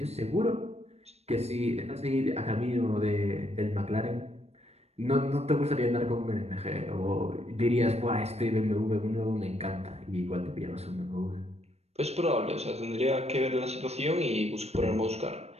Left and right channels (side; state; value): left; late; 0.31 ms